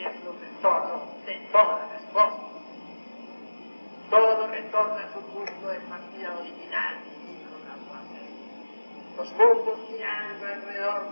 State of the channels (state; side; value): inverted; both; correlation -1.00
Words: retorno de todas las cosas. Todo retorna a su punto de partida original, dijo Lavoisier. Los mundos girando alrededor